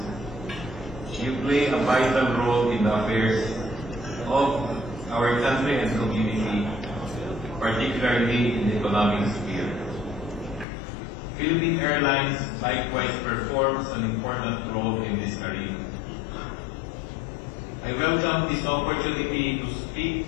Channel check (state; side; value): drops out; right; at 10.7 s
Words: you play a vital role in the affairs of our country and community, particularly in the economic sphere. Philippine Airlines likewise performs an important role in this arena. I welcome this opportunity to speak